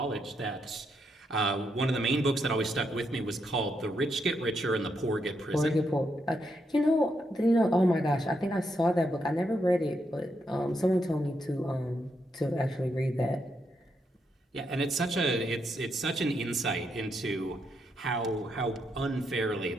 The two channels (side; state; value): both; normal; correlation 0.80